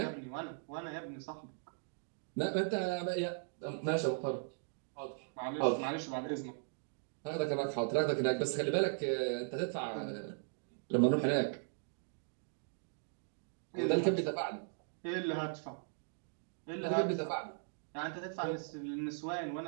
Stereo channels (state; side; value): silent; left; digital silence